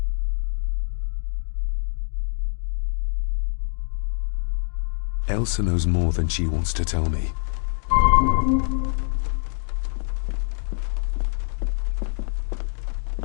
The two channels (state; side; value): silent; right; digital silence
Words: Elsa knows more than she wants to tell me.